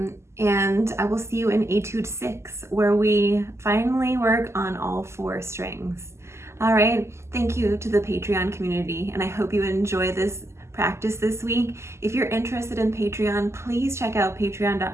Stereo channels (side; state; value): left; late; 0.13 ms